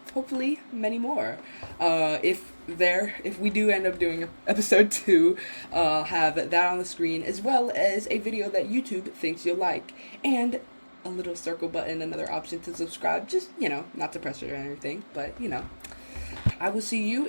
hopefully many more. If we do end up doing episode 2, have that on the screen, as well as a video that YouTube thinks you'll like, and a little circle button, another option to subscribe, just, not to pressure or anything, but, I will see you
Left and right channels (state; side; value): inverted; both; correlation -1.00